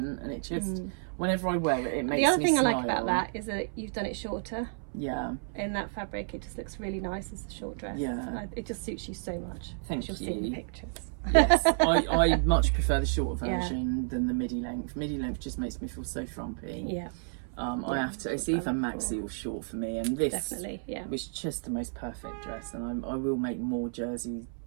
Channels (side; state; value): left; silent; 57 dB below the other